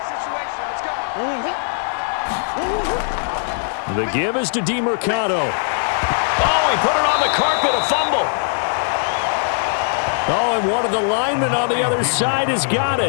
The give is to DeMercado. Oh, he put it on the carpet, a fumble. Oh, and one of the linemen on the other side has got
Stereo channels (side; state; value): right; silent; 58 dB below the other